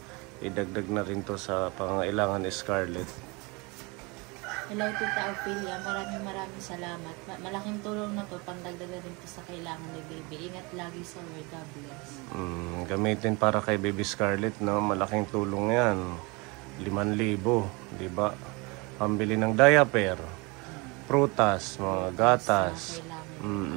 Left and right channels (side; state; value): left; quieter; 27.4 dB